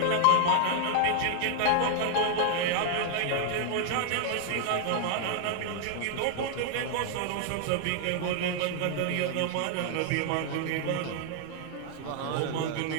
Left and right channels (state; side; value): different; both; correlation 0.00